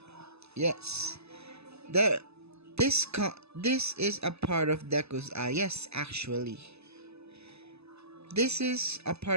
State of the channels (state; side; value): late; left; 0.79 ms